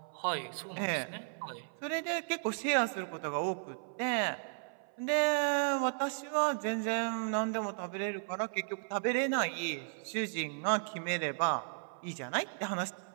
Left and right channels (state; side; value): silent; left; 54 dB below the other